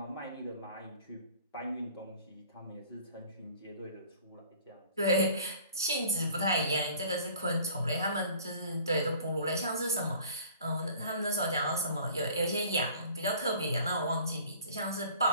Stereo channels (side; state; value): both; inverted; correlation -0.51